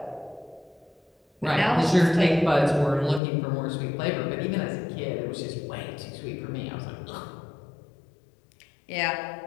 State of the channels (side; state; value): right; drops out; at 3.2 s